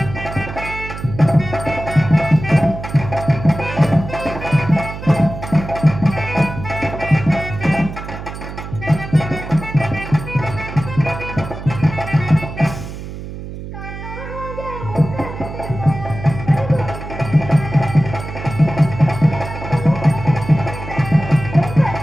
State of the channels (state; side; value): noise; right; hum, 10 dB below the sound